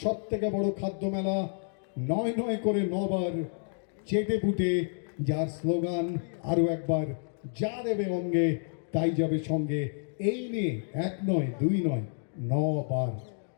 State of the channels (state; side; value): silent; right; digital silence